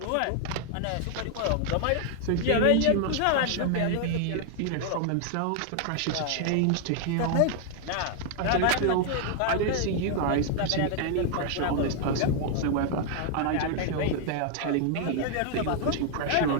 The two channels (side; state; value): both; different; correlation 0.00